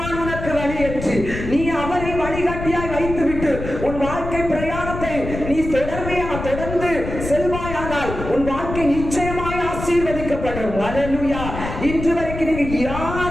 உனக்கு வழி என்று நீ அவரை வழிகாட்டியாய் வைத்துவிட்டு உன் வாழ்க்கை பிரயாணத்தை நீ தொடர்ந்து செல்வாயானால் உன் வாழ்க்கை நிச்சயமாய் ஆசீர்வதிக்கப்படும். ஹல்லேலூயா. இன்று வரைக்கும் நீங்க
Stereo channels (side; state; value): left; noise; rumble, 7 dB below the sound